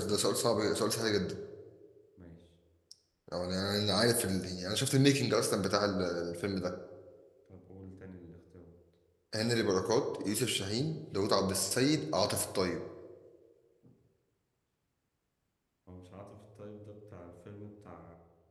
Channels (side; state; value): both; identical; correlation 1.00